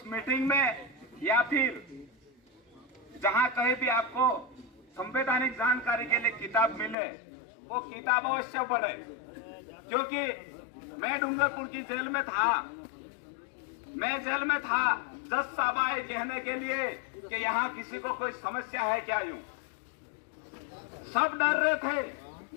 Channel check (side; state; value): right; drops out; at 7.0 s